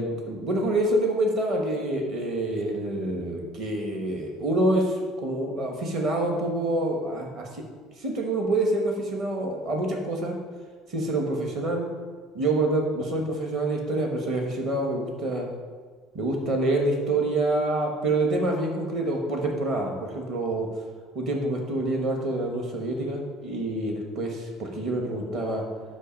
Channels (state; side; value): normal; both; correlation 0.49